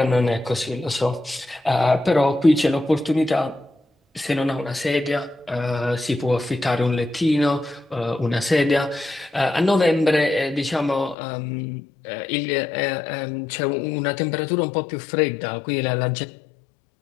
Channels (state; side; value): drops out; right; at 11.2 s